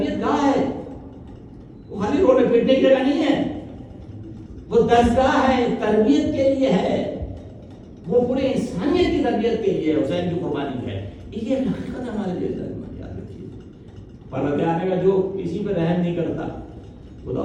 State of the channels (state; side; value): identical; both; correlation 1.00